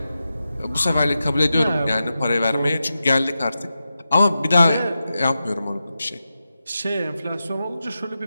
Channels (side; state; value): both; inverted; correlation -0.91